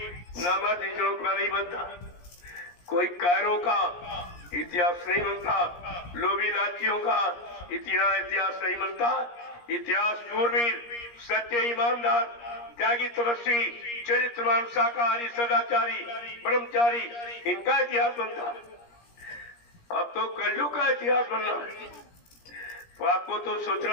नामर्द का नहीं बनता, कोई कायरों का इतिहास नहीं बनता, लोभी लालचियों का इतिहास नहीं बनता। इतिहास शूरवीर, सच्चे ईमानदार, त्यागी, तपस्वी, चरित्रवान, शाकाहारी, सदाचारी, ब्रह्मचारी, इनका इतिहास बनता। अब तो कलयुग का इतिहास बनना है। तो आपको तो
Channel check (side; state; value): right; late; 17 ms